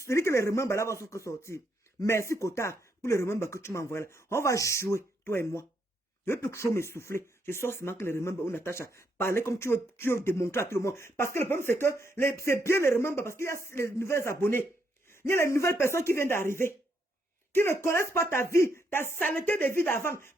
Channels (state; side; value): normal; both; correlation 0.76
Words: dit que les remembres là vont sortir. Merci Kota pour les remembres que tu m'envoies là. On va jouer, toi et moi. Je ne veux plus trop m'essouffler. Je sors seulement que les remember ou Natacha. Parler comme tu veux démontrer à tout le monde. Parce que le problème, c'est que c'est bien les remember parce qu'il y a les nouvelles abonnés. Il y a les nouvelles personnes qui viennent d'arriver. Qui ne connaissent pas ta vie, ta saleté de vie d'avant.